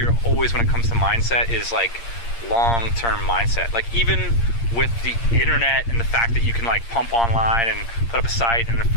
always when it comes to mindset is like long-term mindset. Like even with the internet and the fact that you can like pump online and put up a site and an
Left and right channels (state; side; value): late; right; 8.6 ms